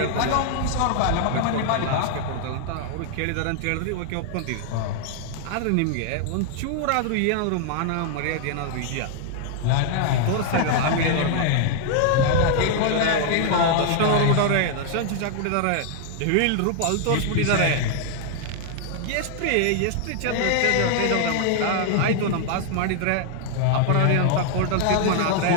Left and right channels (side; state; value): both; different; correlation 0.00